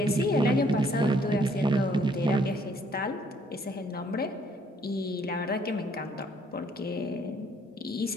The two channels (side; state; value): both; normal; correlation 0.64